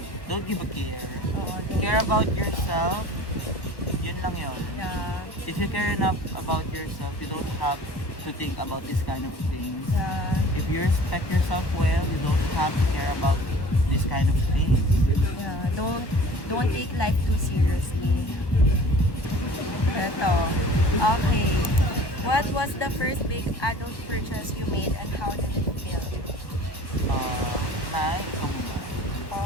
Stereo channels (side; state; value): right; late; 1.2 ms